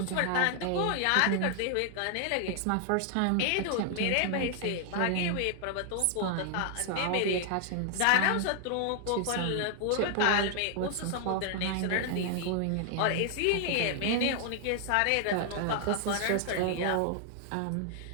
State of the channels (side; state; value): both; different; correlation 0.00